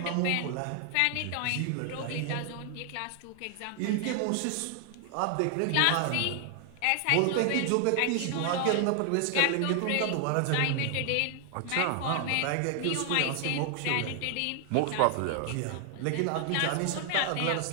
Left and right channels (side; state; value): both; different; correlation 0.00